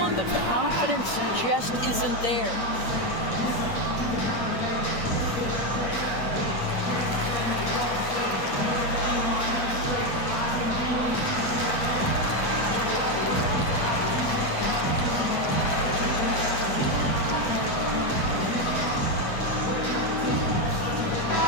the confidence just isn't there.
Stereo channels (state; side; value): late; right; 8.8 ms